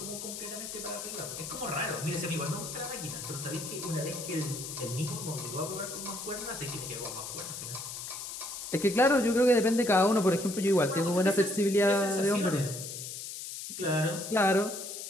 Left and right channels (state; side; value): noise; left; hiss, 8 dB below the sound